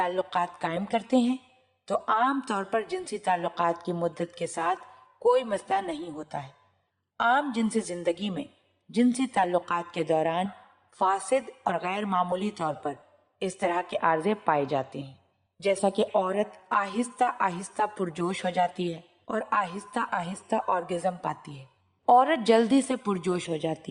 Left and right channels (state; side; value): identical; both; correlation 1.00